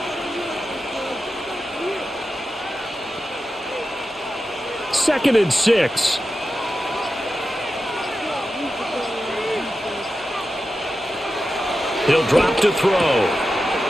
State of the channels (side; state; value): both; normal; correlation 0.91